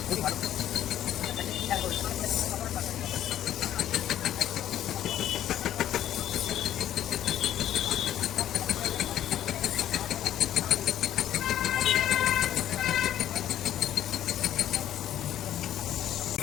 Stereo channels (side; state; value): right; quieter; 11.7 dB